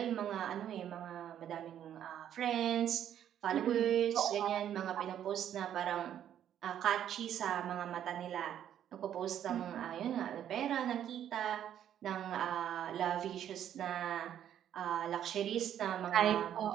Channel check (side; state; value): left; quieter; 10.3 dB